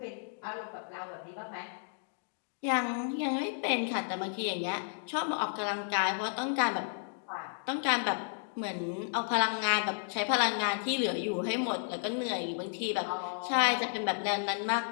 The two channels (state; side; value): silent; right; digital silence